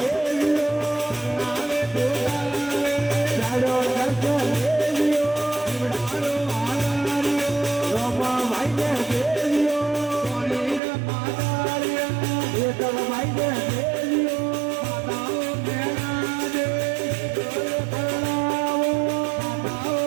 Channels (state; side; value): drops out; left; at 10.8 s